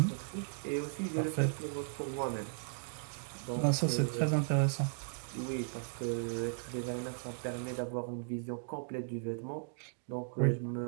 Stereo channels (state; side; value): silent; left; digital silence